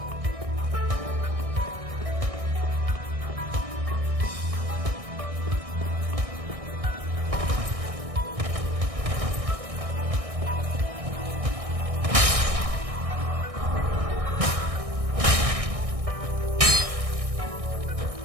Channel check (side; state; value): left; late; 1.6 ms